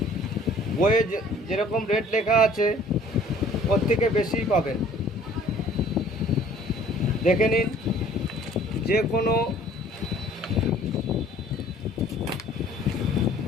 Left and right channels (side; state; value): both; normal; correlation 0.54